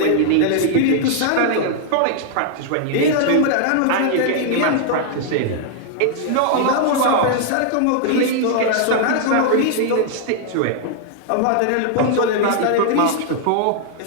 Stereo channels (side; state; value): both; different; correlation 0.00